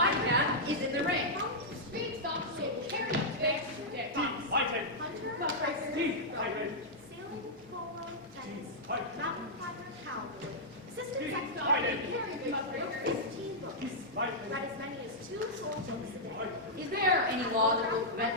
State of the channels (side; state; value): both; normal; correlation -0.08